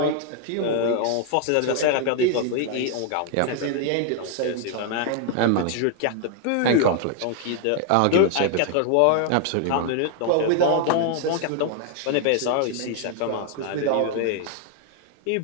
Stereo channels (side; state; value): both; different; correlation 0.00